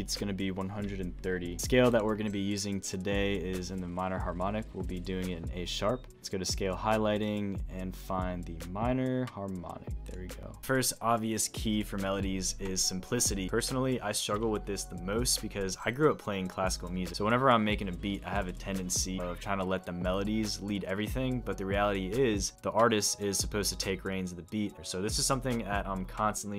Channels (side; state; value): both; identical; correlation 1.00